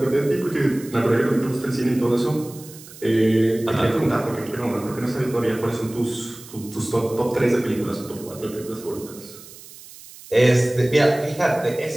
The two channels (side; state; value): right; noise; hiss, 18 dB below the sound